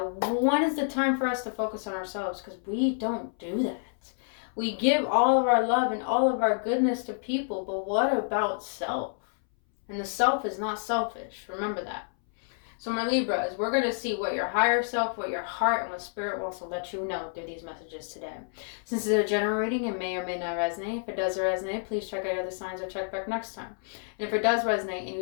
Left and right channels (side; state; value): right; silent; 59 dB below the other